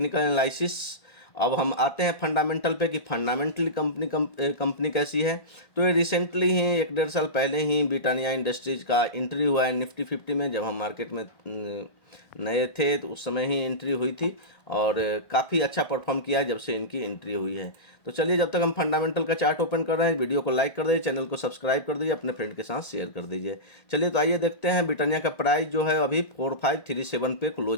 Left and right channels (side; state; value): right; late; 1.9 ms